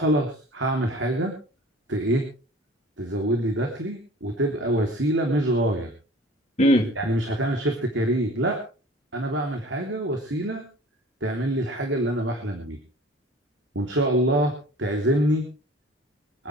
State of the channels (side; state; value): both; normal; correlation 0.45